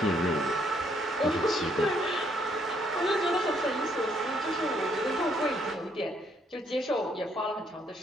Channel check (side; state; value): both; normal; correlation 0.70